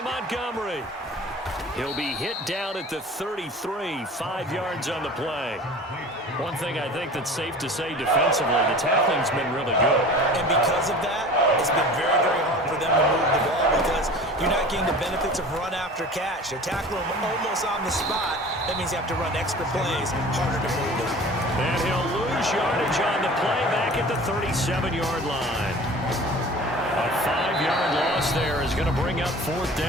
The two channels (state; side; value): normal; both; correlation 0.41